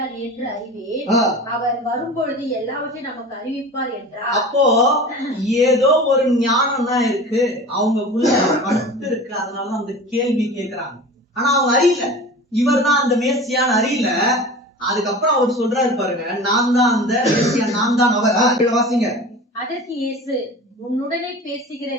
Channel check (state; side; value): normal; both; correlation 0.36